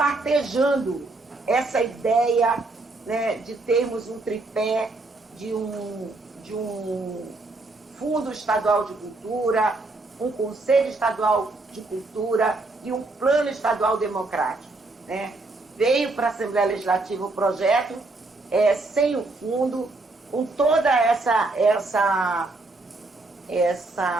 essa ideia, né, de termos um tripé de um Fundo Estadual de Cultura, um Conselho Estadual de Cultura e um Plano Estadual Democrático, né? Veio para a Assembleia Legislativa o projeto sem o fundo, com toda essa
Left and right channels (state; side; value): quieter; left; 3.2 dB